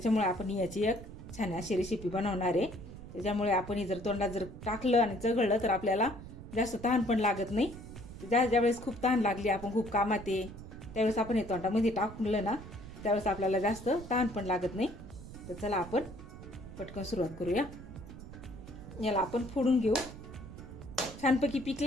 आपण याची एक छान अशी रेसिपी बनवणार आहे। त्याच्यामुळे आपण जर तोंडात जर टाकलं आणि चघळलं तर आपल्याला जास्त तहान पण लागत नाही। ज्यावेळेस खूप तहान लागली, आपण खूप कामात आहे, त्यावेळेस आपण हे तोंडामध्ये टाकलं ना, त्यावेळेस आपल्याला जास्त तहान पण लागत नाही। तर चला आपण पटकन सुरुवात करूया। याला आपण फोडून घेऊ। छानपैकी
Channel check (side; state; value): right; noise; rumble, 13 dB below the sound